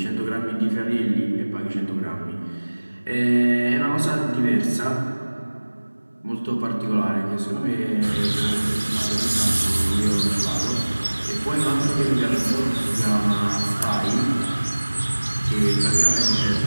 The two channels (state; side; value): inverted; both; correlation -1.00